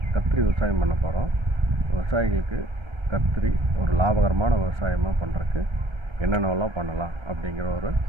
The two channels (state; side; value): late; left; 1.3 ms